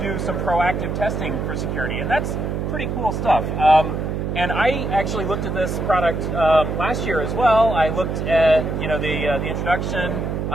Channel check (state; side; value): noise; right; hum, 2 dB below the sound